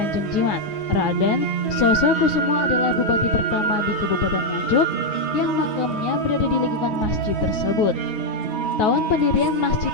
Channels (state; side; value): late; right; 9.4 ms